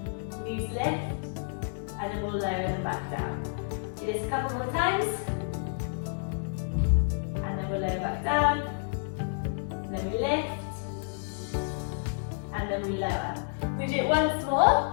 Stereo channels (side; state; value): right; silent; digital silence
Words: knees lift, and then we'll lower them back down. Do this a couple more times. We'll lower back down, then we lift, and then we lower. We do it once more,